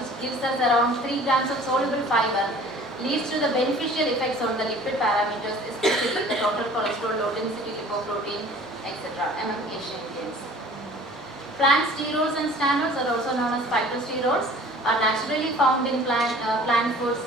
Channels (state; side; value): normal; both; correlation 0.48